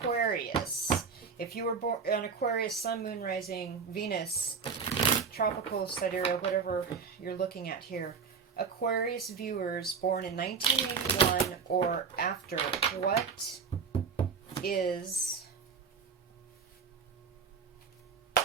If you were born on Aquarius, Sun, Moon, Rising, Venus, Tropical, Sidereal, whatever you're looking at here. Aquarius viewers born in 1981 or after, what is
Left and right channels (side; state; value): left; quieter; 5.7 dB